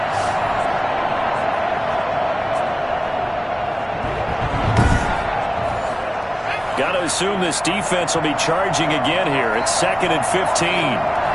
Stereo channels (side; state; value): both; identical; correlation 1.00